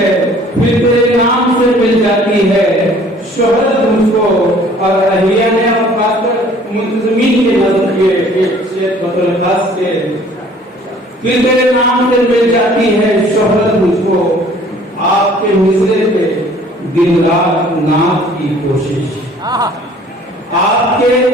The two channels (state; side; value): normal; both; correlation 0.54